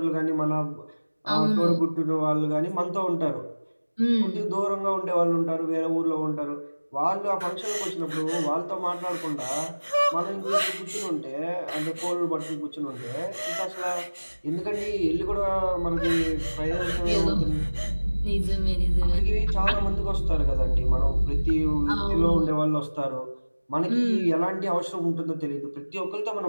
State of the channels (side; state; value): both; inverted; correlation -1.00